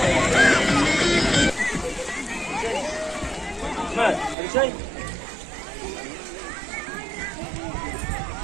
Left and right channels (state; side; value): drops out; left; at 4.4 s